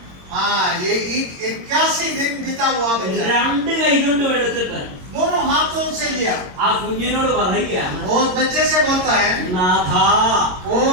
हाँ, ये 81 दिन बीता हुआ बच्चा രണ്ട് കൈ കൊണ്ടും എടുത്തിട്ട് दोनों हाथों से लिया। ആ കുഞ്ഞിനോട് പറയുകയാണ്, वो बच्चे से बोलता है നാഥ, ओ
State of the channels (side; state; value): left; late; 22 ms